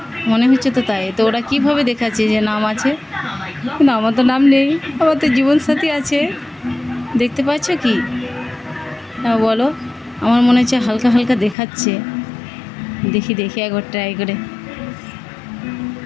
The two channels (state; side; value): drops out; right; at 11.6 s